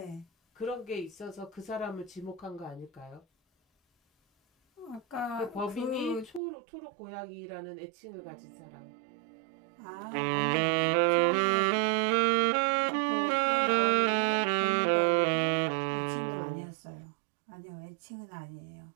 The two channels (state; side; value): drops out; left; at 6.4 s